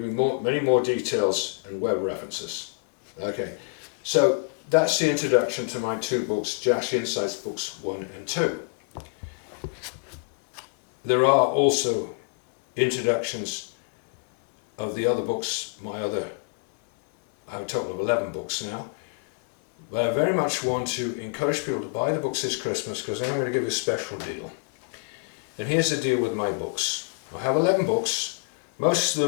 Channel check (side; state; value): right; quieter; 35.9 dB